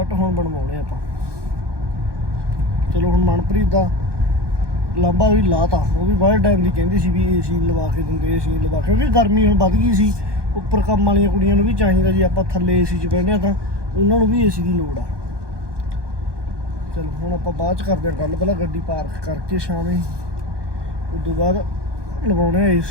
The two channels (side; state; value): left; late; 1.2 ms